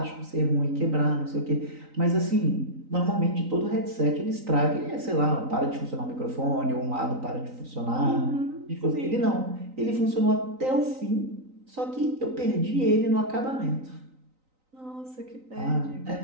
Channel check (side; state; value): left; late; 3.9 ms